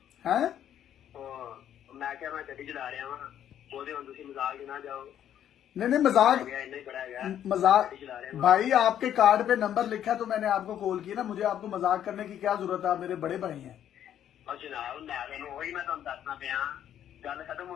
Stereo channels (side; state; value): right; quieter; 10.4 dB